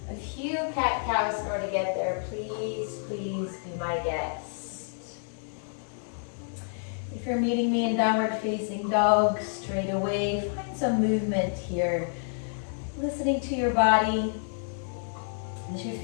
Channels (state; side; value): silent; right; digital silence